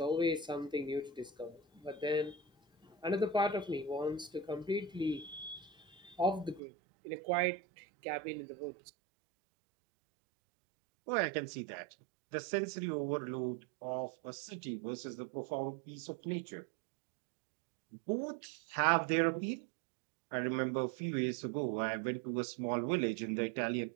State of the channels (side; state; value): left; drops out; at 6.6 s